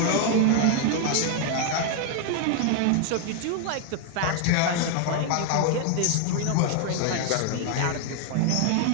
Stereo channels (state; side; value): different; both; correlation 0.00